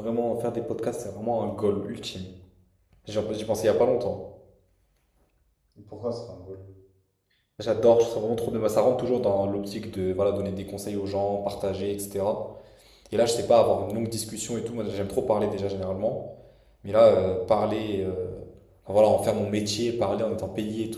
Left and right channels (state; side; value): identical; both; correlation 1.00